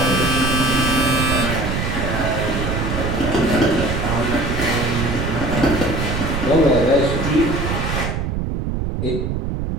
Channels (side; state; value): right; noise; rumble, 2 dB below the sound